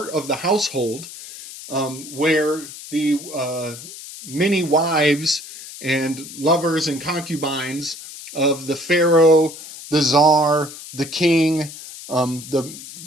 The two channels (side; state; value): left; noise; hiss, 14 dB below the sound